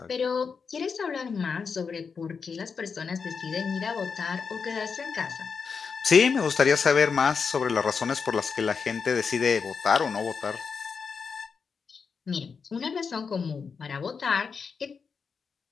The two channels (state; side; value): quieter; right; 5.6 dB